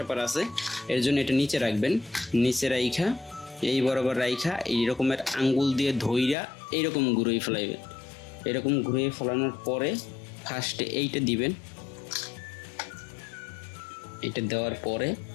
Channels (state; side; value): drops out; right; at 6.4 s